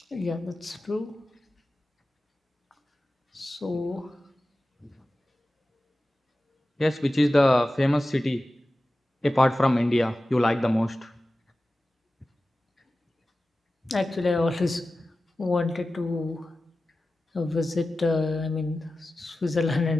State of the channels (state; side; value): normal; both; correlation 0.95